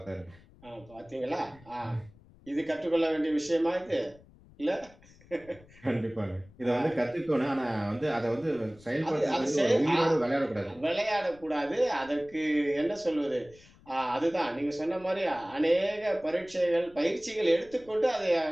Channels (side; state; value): left; noise; rumble, 25 dB below the sound